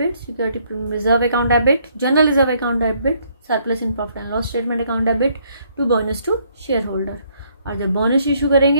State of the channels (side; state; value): both; inverted; correlation -0.68